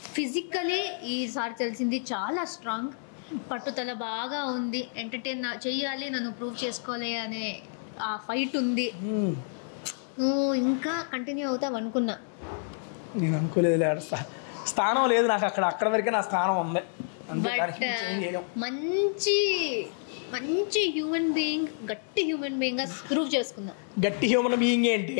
ఫిజికలీ ఈసారి తెలిసింది చాలా స్ట్రాంగ్, పట్టుదల బాగా ఉంది, ఎంటర్టైన్ చేయాలి, నన్ను ప్రూవ్ చేసుకోవాలి అనే ఆ ఫైట్ ఉంది. నువ్వు ఇంకా కంటిన్యూ అవుతావు అనుకున్నా, నేను అనుకోలేదు. స్థానం లేదు నాకు అక్కడ వరకే నా స్థానం ఉంది. బట్ మంచి మంచి హ్యూమన్ బీయింగ్, గట్టి హ్యూమన్ బీయింగ్ గా ప్రూవ్ చేసుకున్నా. గట్టి హ్యూమన్ బీయింగ్ ఏంటి?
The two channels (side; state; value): right; silent; digital silence